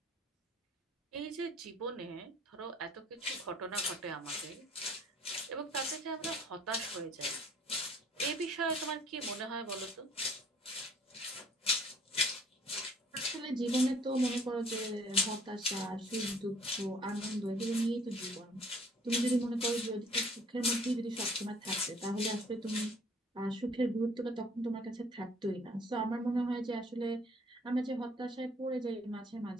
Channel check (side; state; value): both; normal; correlation 0.57